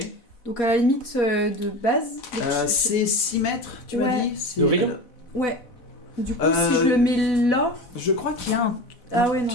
Donc à la limite de base. donc C'est 6 mètres, tu Ouais. m'as dit c'est- De rayon Ouais. Du coup, Euh, si je le mets là... Je crois qu'il y a un... Ah ouais, non.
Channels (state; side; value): late; right; 4.0 ms